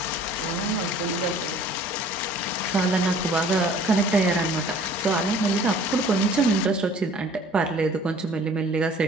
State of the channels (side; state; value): both; normal; correlation 0.51